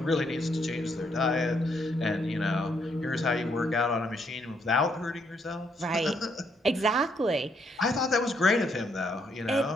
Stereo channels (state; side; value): normal; both; correlation 0.73